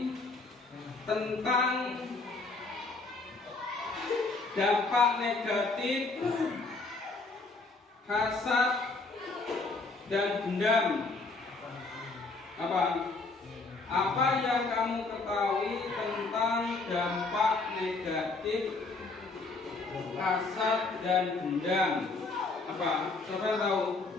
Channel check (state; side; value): quieter; right; 3.7 dB